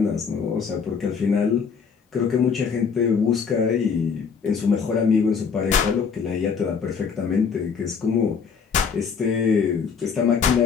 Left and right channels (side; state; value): right; quieter; 6.1 dB